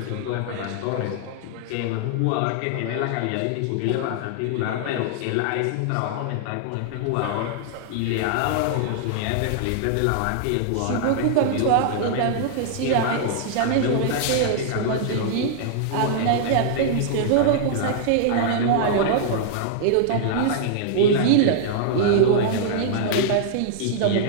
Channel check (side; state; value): both; different; correlation -0.01